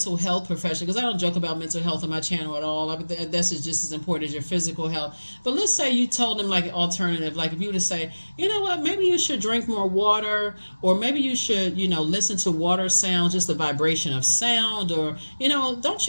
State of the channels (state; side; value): inverted; both; correlation -1.00